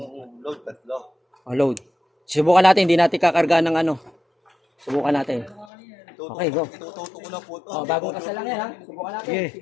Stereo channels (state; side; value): drops out; right; at 5.7 s